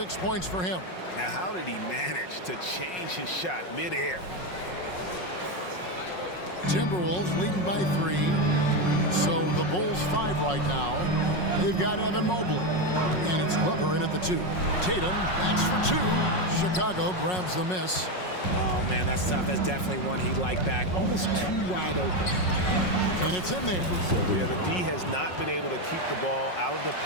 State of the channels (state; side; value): late; right; 5.5 ms